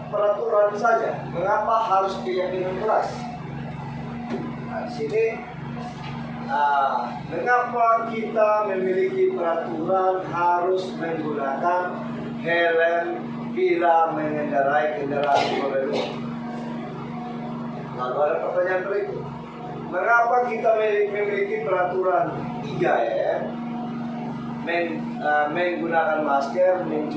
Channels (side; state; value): both; identical; correlation 1.00